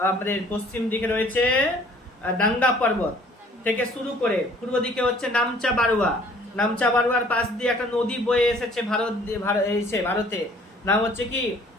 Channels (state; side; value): normal; both; correlation 0.56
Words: আমাদের পশ্চিম দিকে রয়েছে ডাঙ্গা পর্বত থেকে শুরু করে পূর্ব দিকে হচ্ছে নামচা বারুয়া। নামচা বারুয়ার পাশ দিয়ে একটা নদী বয়ে এসেছে ভারতে, নাম হচ্ছে কি